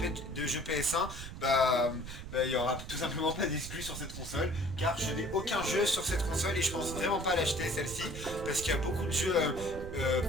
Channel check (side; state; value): right; noise; rumble, 10 dB below the sound